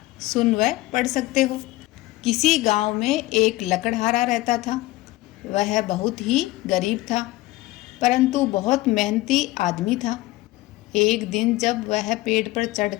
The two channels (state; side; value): quieter; right; 18.6 dB